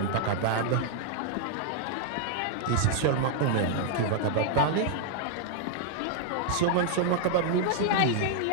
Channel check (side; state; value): both; different; correlation -0.01